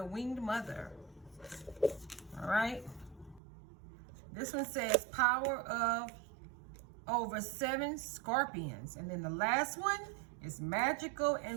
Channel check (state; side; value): drops out; left; at 3.4 s